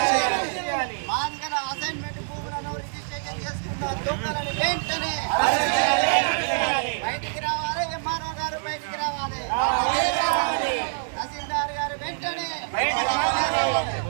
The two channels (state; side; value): silent; left; digital silence